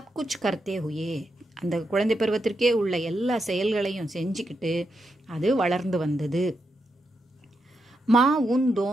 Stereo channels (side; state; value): both; normal; correlation 0.84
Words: குச் கர்த்தே ஹுயே, அந்த குழந்தை பருவத்திற்கே உள்ள எல்லா செயல்களையும் செஞ்சுக்கிட்டு அது வளர்ந்து வந்தது. மா உன்